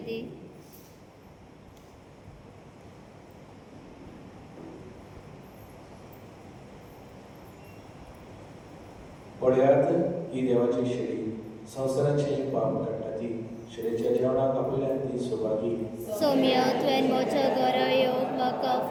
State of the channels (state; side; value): identical; both; correlation 1.00